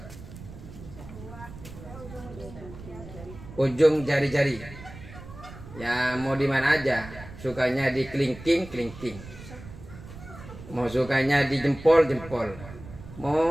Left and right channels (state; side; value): noise; right; rumble, 15 dB below the sound